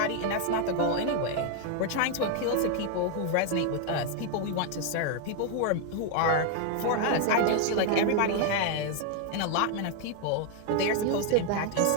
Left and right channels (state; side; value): different; both; correlation 0.00